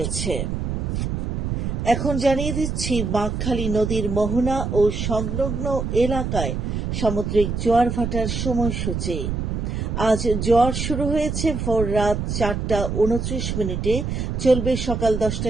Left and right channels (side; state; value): right; noise; rumble, 2 dB below the sound